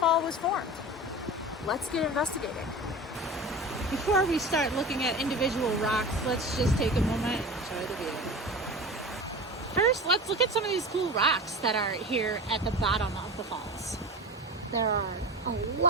was formed. Let's get investigating. Before we start looking at individual rocks, let's just take a moment and enjoy the view. First, let's look at some of these cool rocks that are here at the bottom of the falls. There are a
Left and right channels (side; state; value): both; normal; correlation 0.32